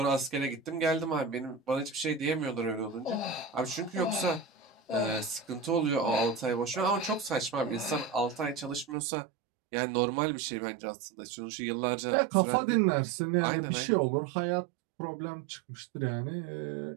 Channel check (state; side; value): drops out; left; at 9.0 s